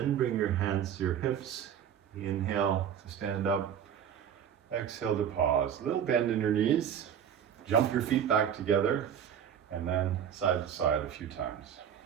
bring your hands to your hips. Inhale to stand up, exhale to pause. A little bend in your knees, jump your feet back together, and then side to side a few times.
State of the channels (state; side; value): quieter; left; 8.8 dB